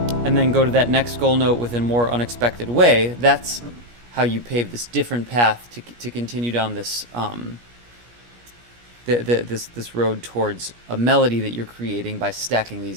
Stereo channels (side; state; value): left; late; 17 ms